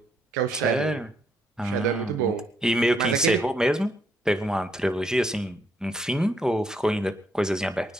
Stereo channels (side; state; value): both; normal; correlation 0.73